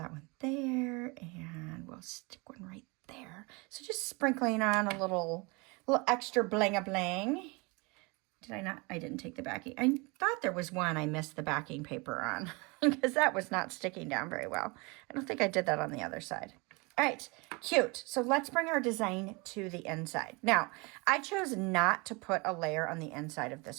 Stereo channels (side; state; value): left; quieter; 27.8 dB